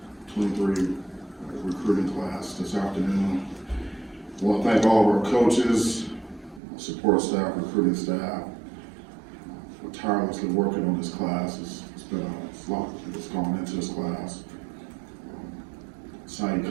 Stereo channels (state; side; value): drops out; left; at 6.6 s